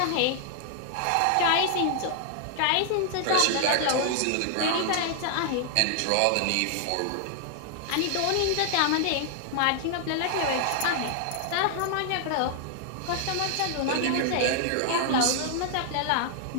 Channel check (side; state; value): both; different; correlation 0.00